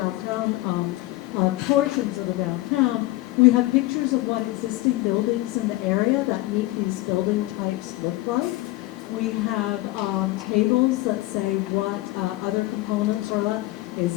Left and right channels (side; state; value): right; quieter; 18.8 dB